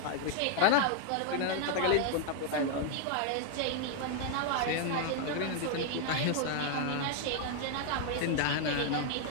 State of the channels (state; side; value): different; both; correlation 0.00